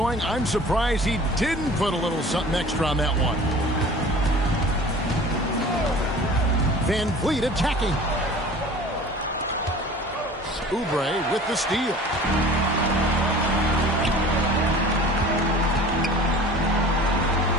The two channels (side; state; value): both; normal; correlation 0.43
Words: I'm surprised he didn't put a little something extra on that one. VanVleet attacking. Oubre with the steal.